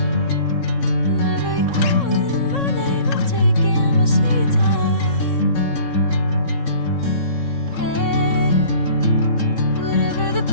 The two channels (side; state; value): right; late; 3.6 ms